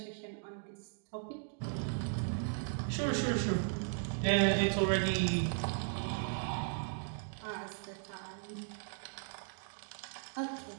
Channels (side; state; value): left; silent; digital silence